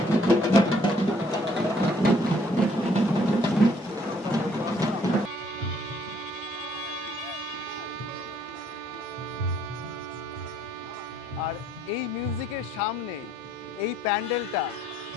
আর এই মিউজিকের সামনে এই প্যান্ডেলটা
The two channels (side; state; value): both; normal; correlation 0.64